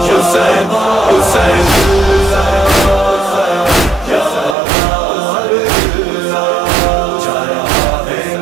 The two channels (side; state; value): left; drops out; at 4.5 s